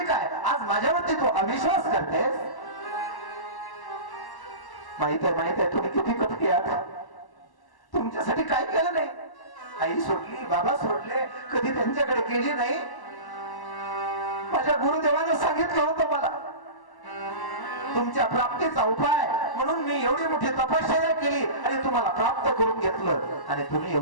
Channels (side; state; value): right; late; 1.1 ms